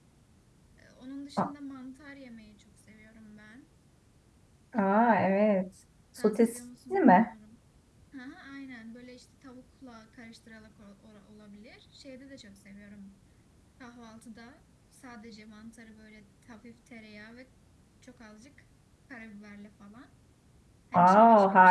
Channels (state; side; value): identical; both; correlation 1.00